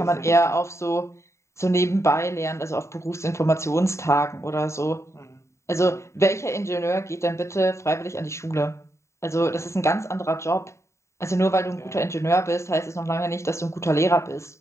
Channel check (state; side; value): late; right; 0.14 ms